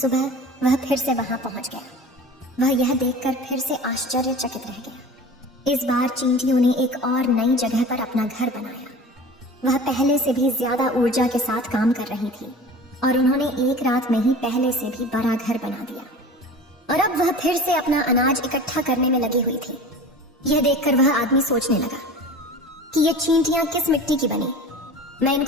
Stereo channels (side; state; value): both; normal; correlation 0.38